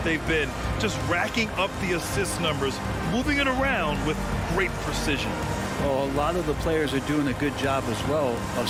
been? Just racking up the assist numbers, moving it around with great precision. Well, a lot of the players are doing a good job as well of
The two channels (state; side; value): identical; both; correlation 1.00